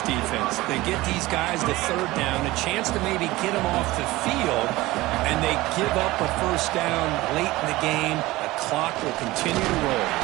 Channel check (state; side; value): quieter; left; 19.0 dB